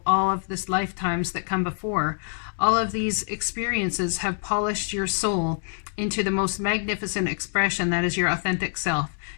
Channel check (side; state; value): right; silent; digital silence